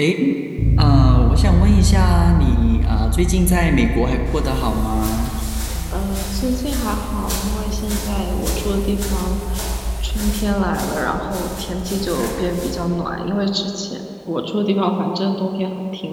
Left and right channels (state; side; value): identical; both; correlation 1.00